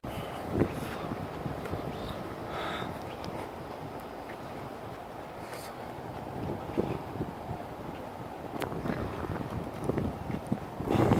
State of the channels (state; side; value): identical; both; correlation 1.00